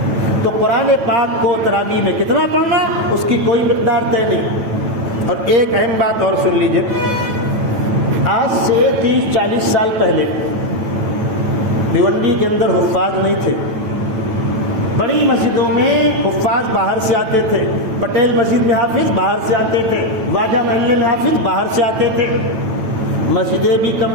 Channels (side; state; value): left; late; 9.1 ms